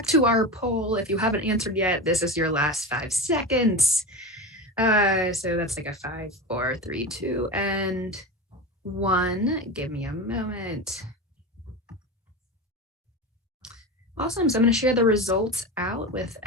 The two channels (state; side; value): normal; both; correlation 0.24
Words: to our poll. If you haven't answered yet, this is your last 5 seconds. So that's like a 5, 4, 3, 2, and 1. Give me a moment. Awesome. So I'm going to share the results out with